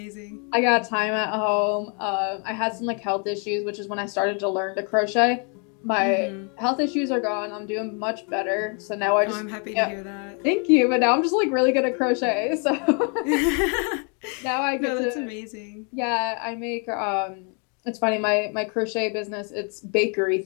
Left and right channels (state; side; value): quieter; right; 38.3 dB